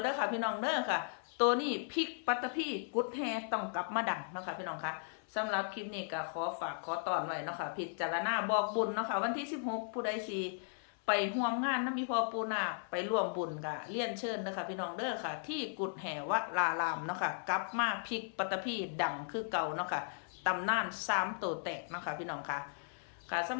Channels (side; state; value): right; silent; 53 dB below the other